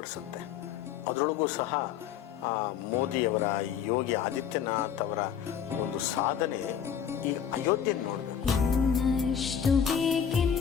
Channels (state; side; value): quieter; right; 8.2 dB